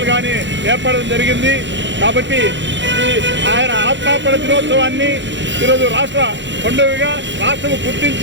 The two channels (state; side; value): late; left; 0.53 ms